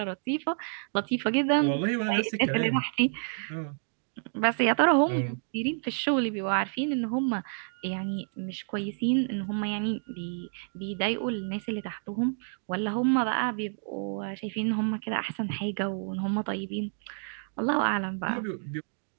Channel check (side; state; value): left; silent; digital silence